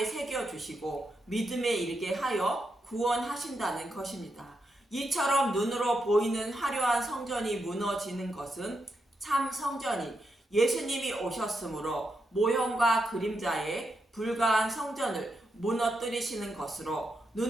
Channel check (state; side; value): normal; both; correlation 0.84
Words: 새겨주시고 믿음에 이르게 하여 구원하신다는 것입니다. 이처럼 눈으로 보이는 화려한 성전이 무너지는 것은 참 성전이 예수님이 오셨으므로 모형과 그림자에 불과한 성전을 무너뜨리시는 것으로